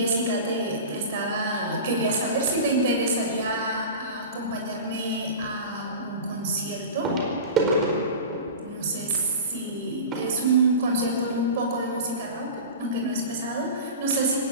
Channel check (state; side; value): inverted; both; correlation -0.32